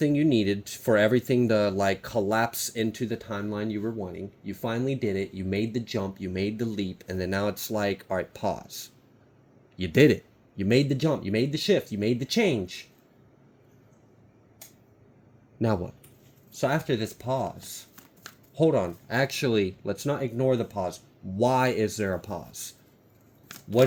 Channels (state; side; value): identical; both; correlation 1.00